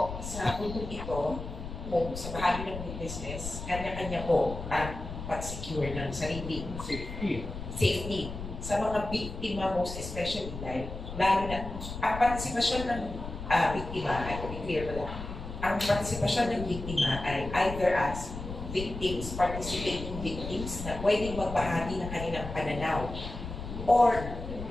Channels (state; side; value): noise; left; rumble, 8 dB below the sound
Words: sa puntong ito, kung sa bahagi ng witnesses, kanya-kanya po ang pag-secure ng sarili. Safety. Sa mga biktima, most especially, dahil lalo na, ang partisipasyon ng biktima, ay to be clear wala, ang partisipasyon ng biktima ay either as victims, participating victims na pwedeng magbahagi ng kanilang pananaw, or